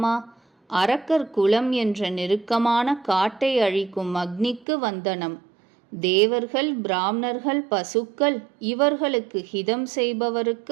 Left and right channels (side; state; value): left; drops out; at 4.7 s